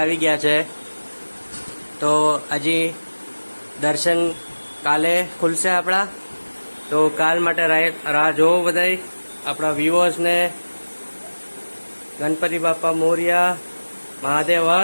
ગયા છે. તો હજી દર્શન કાલે ખુલશે આપણા, તો કાલ માટે રાહ જોવો બધાય આપણા વ્યુઅર્સને. ગણપતિ બાપા મોરિયા, મહાદેવ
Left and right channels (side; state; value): both; inverted; correlation -1.00